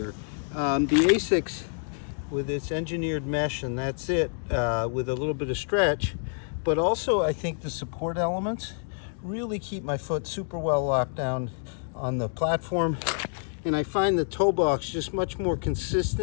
The ASICS with its engineered mesh, and that's it, with a little bit of stretch, but also I think the support elements really keep my foot super well locked down on the platform, and I find the toe box just much more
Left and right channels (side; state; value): right; silent; 60 dB below the other